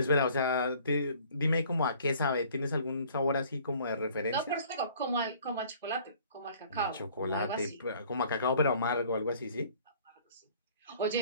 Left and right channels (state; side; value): inverted; both; correlation -0.54